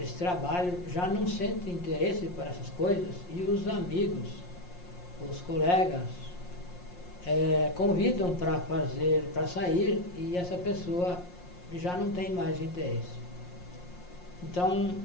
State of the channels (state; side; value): late; right; 5.6 ms